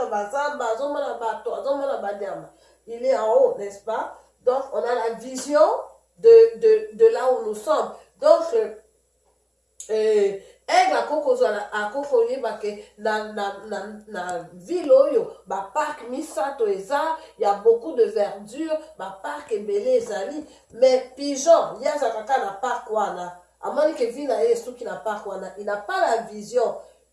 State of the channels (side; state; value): both; identical; correlation 1.00